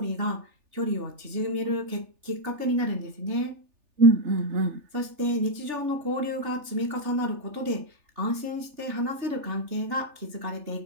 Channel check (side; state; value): left; late; 3.4 ms